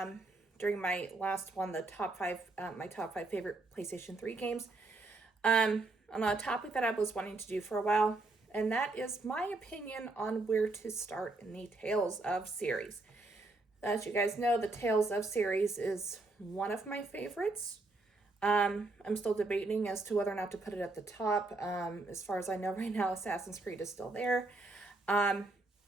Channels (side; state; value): left; quieter; 3.2 dB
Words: during my last one, the my top five favorite PlayStation 3 games, on a topic that I was wanting to do for a while, and that is my opinion on where to start in the Tales of series. As you guys know, the Tales of series is one of my favorites. I'm still debating as to whether or not to put it at the top. As far as I know right now, Assassin's Creed is still there. Ubisoft